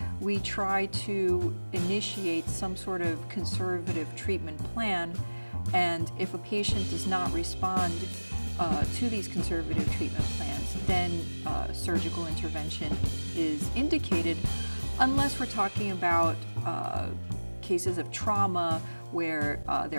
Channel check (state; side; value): inverted; both; correlation -1.00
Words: we try to initiate some sort of conservative treatment plan, and if a patient does not respond to these conservative treatment plans, then surgical intervention is indicated, unless we're talking about cases of trauma where